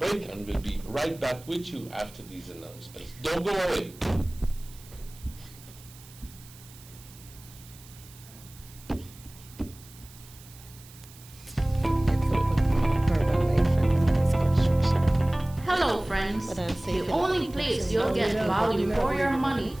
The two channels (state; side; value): noise; right; hiss, 21 dB below the sound